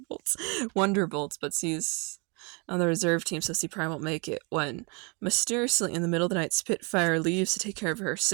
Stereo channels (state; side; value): quieter; left; 31.7 dB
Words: Bolts, Wonder Bolts, but she's on the reserve team, so she probably won't make it. When mysteriously in the middle of the night, Spitfire leaves to take care of her